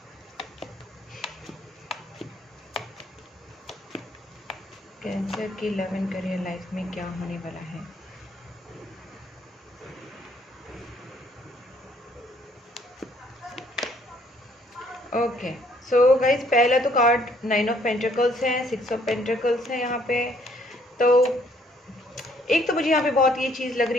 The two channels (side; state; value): both; normal; correlation 0.64